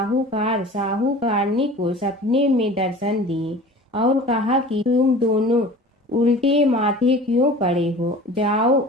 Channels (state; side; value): normal; both; correlation 0.41